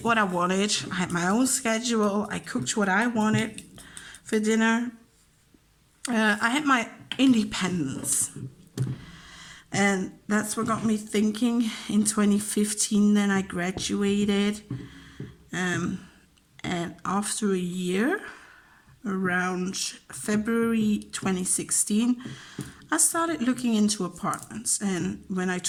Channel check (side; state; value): both; identical; correlation 1.00